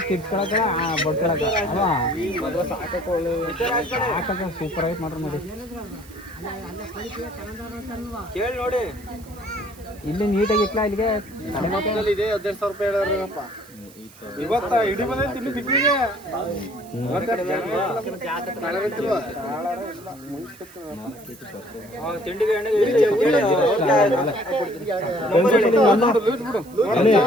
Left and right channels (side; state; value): right; noise; hiss, 23 dB below the sound